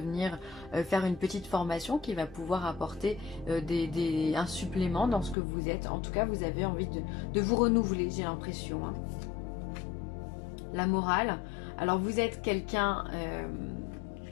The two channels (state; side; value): drops out; right; at 5.4 s